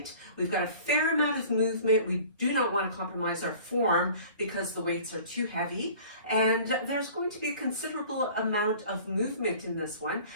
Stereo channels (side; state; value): both; inverted; correlation -0.46